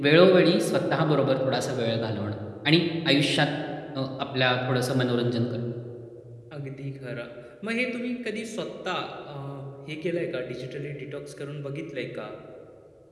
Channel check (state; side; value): identical; both; correlation 1.00